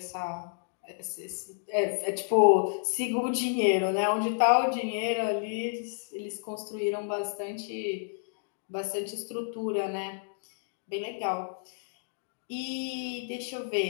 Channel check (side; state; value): right; silent; digital silence